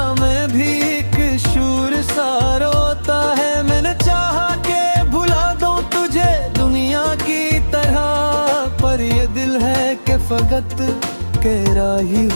में भी एक शूर सा रोता है। मैंने चाहा के भुला दूं तुझे दुनिया की तरह, पर ये दिल है कि फकत तेरा ही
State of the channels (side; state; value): both; inverted; correlation -1.00